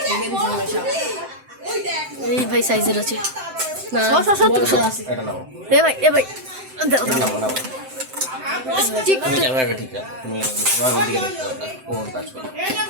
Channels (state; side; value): late; left; 7.7 ms